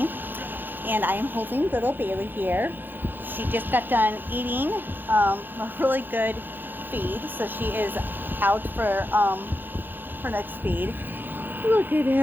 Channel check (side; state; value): left; late; 0.093 ms